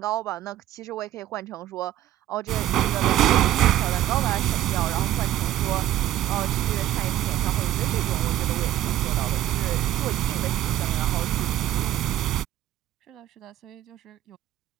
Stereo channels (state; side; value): quieter; left; 13.4 dB